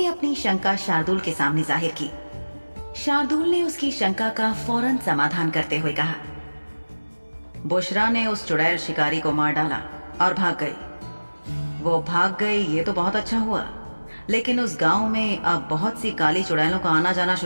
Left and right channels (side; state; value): both; inverted; correlation -1.00